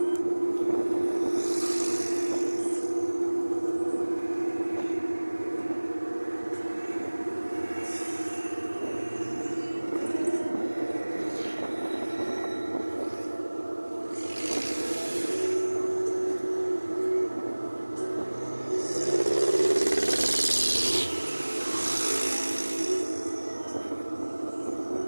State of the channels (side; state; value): both; inverted; correlation -1.00